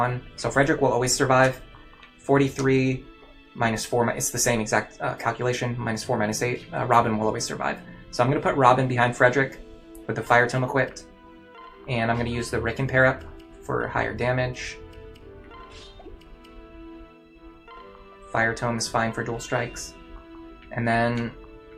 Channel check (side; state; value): both; identical; correlation 1.00